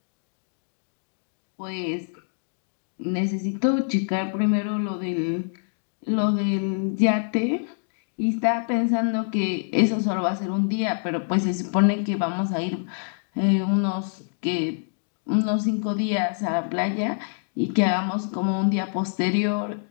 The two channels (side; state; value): right; silent; digital silence